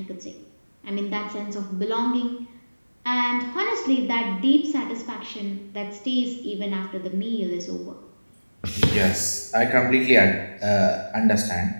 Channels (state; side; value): inverted; both; correlation -1.00